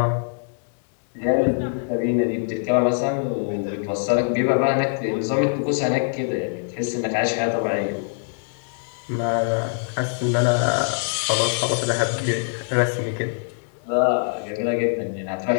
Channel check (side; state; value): right; silent; digital silence